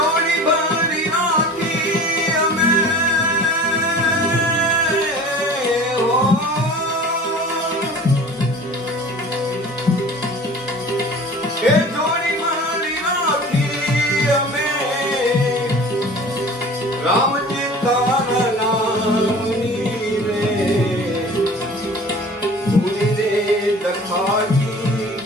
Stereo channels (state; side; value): normal; both; correlation 0.42